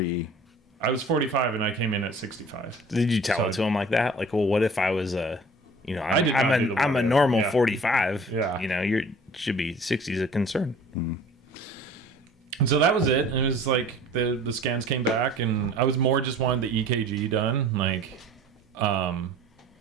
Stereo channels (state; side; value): normal; both; correlation 0.47